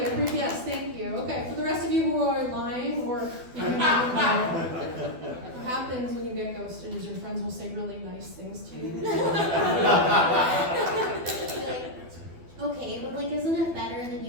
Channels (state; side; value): late; left; 12 ms